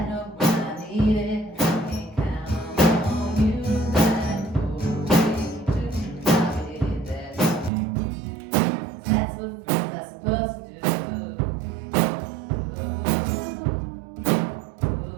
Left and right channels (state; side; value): drops out; left; at 7.7 s